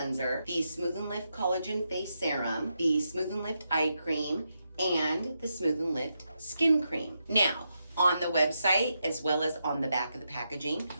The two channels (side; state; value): both; inverted; correlation -0.84